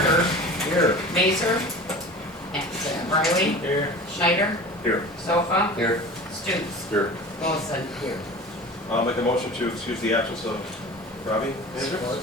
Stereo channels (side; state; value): both; normal; correlation 0.37